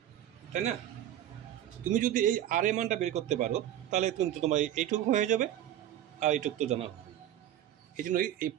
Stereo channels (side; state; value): left; quieter; 11.7 dB